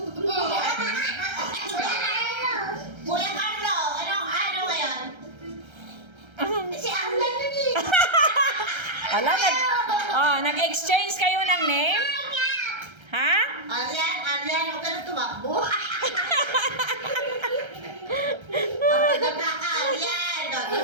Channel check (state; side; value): late; left; 1.3 ms